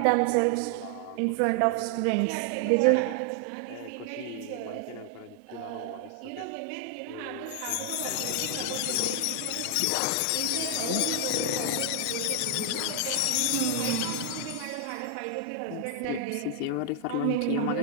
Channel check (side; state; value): both; different; correlation 0.00